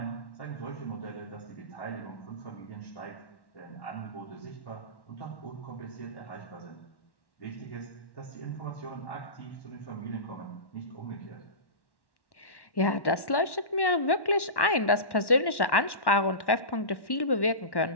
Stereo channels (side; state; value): right; late; 1.1 ms